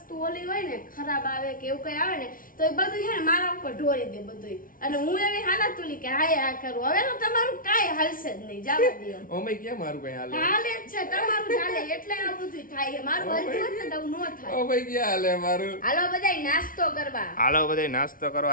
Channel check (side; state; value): right; late; 0.40 ms